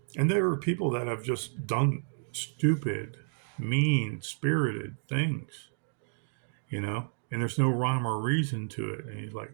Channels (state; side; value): silent; left; digital silence